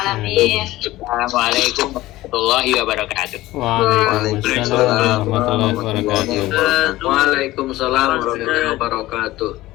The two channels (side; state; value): right; quieter; 17.2 dB